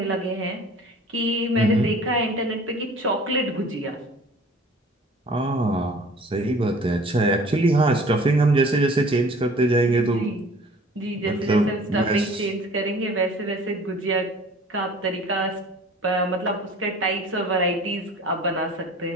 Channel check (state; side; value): normal; both; correlation 0.48